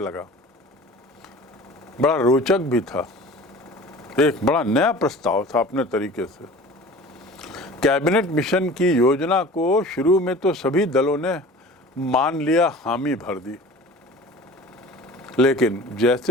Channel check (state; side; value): normal; both; correlation 0.42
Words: बड़ा रोचक भी था, एक बड़ा नया प्रस्ताव था अपने तरीके से। कैबिनेट मिशन की योजना को शुरू में तो सभी दलों ने मान लिया, हामी भर दी, लेकिन